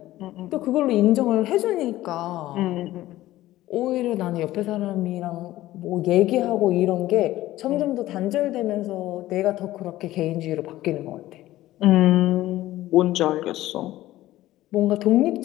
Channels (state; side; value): quieter; right; 15.6 dB